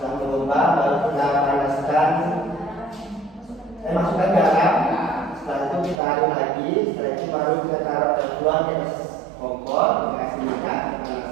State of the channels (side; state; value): left; drops out; at 6.0 s